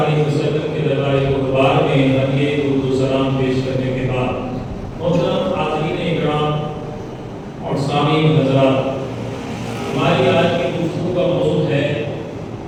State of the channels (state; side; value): identical; both; correlation 1.00